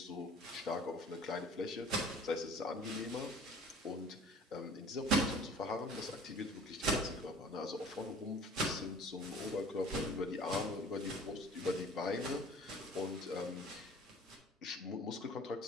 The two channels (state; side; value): normal; both; correlation 0.48